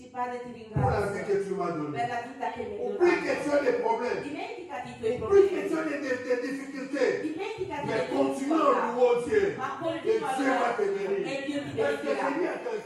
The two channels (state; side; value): identical; both; correlation 1.00